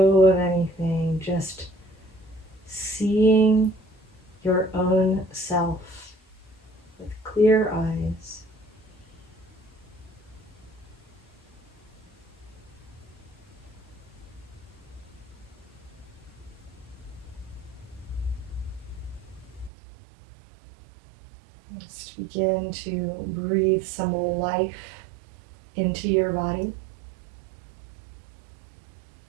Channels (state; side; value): drops out; left; at 19.7 s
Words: of anything, just seeing your own self with clear eyes. Just begin to breathe some life into your body.